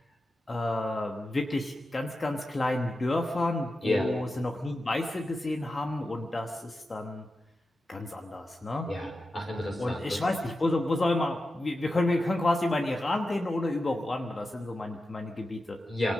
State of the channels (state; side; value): normal; both; correlation 0.91